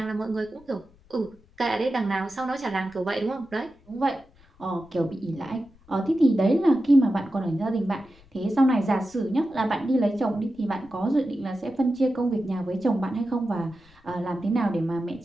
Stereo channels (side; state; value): left; noise; rumble, 28 dB below the sound